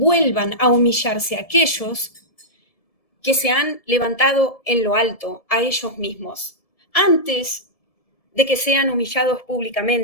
a humillarse a aquellos que se han levantado en lo alto, a ellos mismos, antes de que sean humillados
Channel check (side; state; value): right; late; 1.7 ms